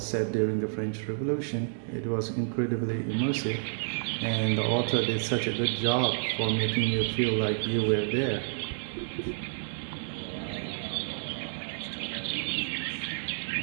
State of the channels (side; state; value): left; silent; digital silence